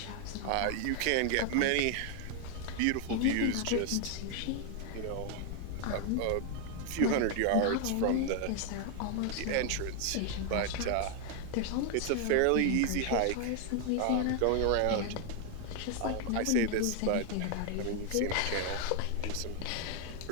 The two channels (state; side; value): different; both; correlation 0.00